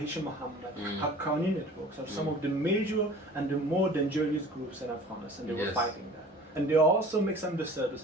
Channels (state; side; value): normal; both; correlation 0.44